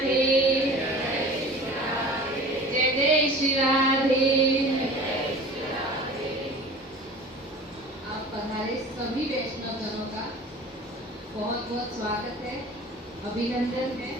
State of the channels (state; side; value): normal; both; correlation 0.41